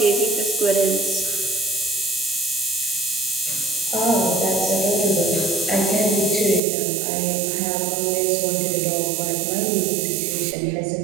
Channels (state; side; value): drops out; left; at 6.6 s